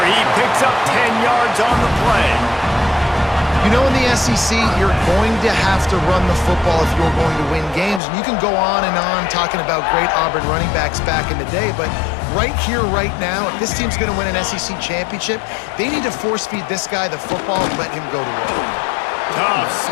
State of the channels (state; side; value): drops out; right; at 8.0 s